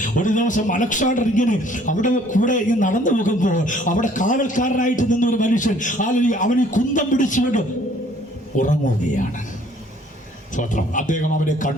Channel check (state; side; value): normal; both; correlation 0.58